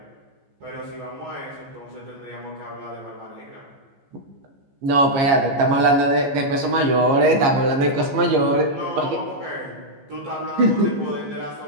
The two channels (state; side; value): late; left; 15 ms